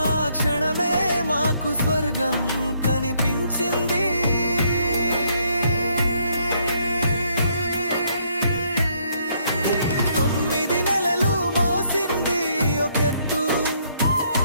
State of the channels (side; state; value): both; inverted; correlation -0.70